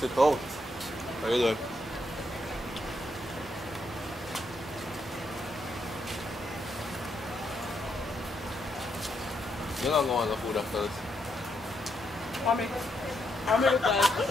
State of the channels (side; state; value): both; normal; correlation 0.78